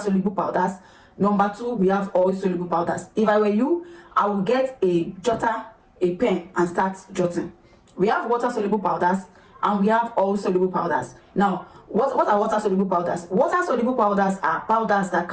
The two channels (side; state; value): both; identical; correlation 1.00